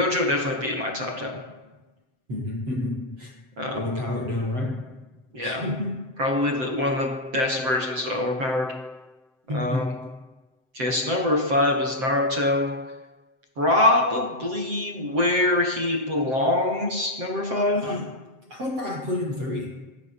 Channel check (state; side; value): late; left; 7.7 ms